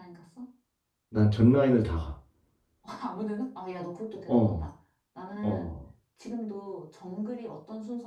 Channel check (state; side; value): identical; both; correlation 1.00